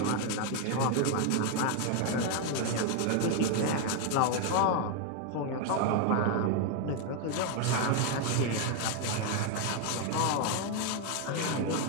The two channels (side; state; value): both; different; correlation 0.01